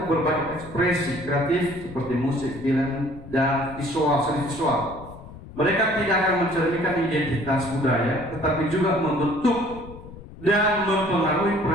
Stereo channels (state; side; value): noise; left; rumble, 16 dB below the sound